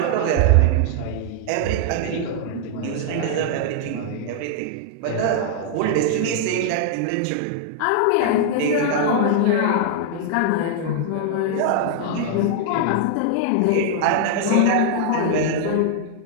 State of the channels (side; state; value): both; different; correlation -0.01